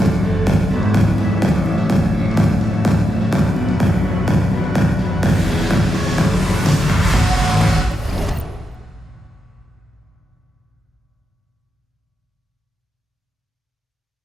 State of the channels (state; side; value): normal; both; correlation 0.85